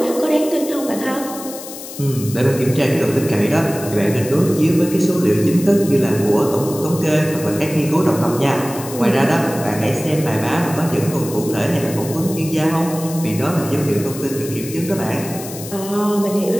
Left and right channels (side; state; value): left; noise; hiss, 12 dB below the sound